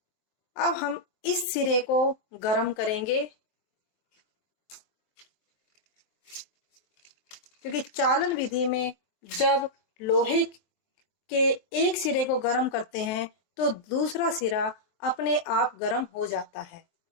अब हम इस सिरे को गर्म करेंगे, क्योंकि चालन विधि में जब लोहे के एक सिरे को गर्म करते हैं तो दूसरा सिरा अपने आप गर्म हो जाता है।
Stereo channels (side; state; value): right; late; 23 ms